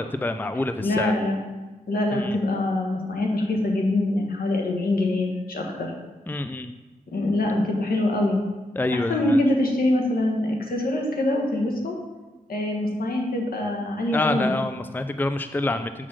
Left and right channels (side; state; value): both; normal; correlation 0.80